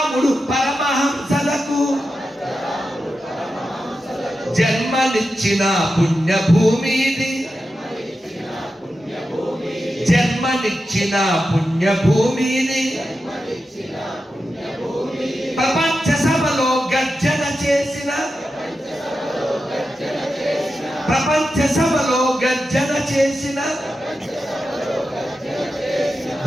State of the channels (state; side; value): normal; both; correlation 0.90